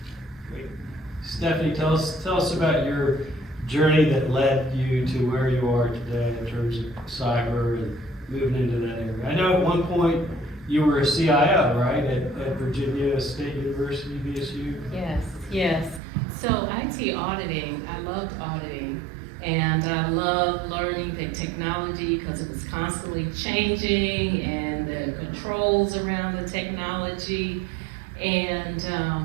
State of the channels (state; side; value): drops out; left; at 16.0 s